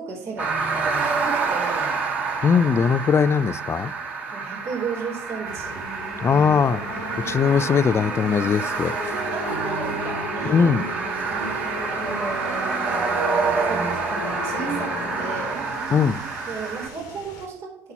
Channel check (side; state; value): both; normal; correlation 0.63